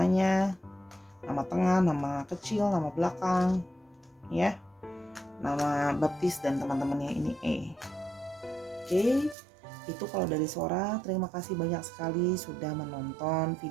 nama tengah, nama kecil, nama belakang, ya. Nama baptis dan teman-temannya ini E. Oke, itu kalau dari Sora. Terima kasih banyak sekali sudah menonton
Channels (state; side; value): drops out; left; at 9.3 s